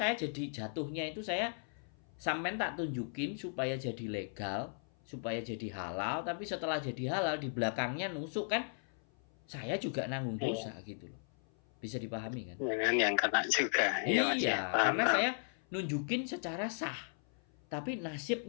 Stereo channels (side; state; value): right; silent; 53 dB below the other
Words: jadi jatuhnya itu saya sampean tak tunjukin supaya jadi legal, supaya jadi halal, tapi setelah jadi halal di belakangnya nusuk kan saya juga nanggung dosa gitu loh. Bisa dipahami kan? Jangan yang kena juga. Iya, karena saya nunjukin secara sah. Tapi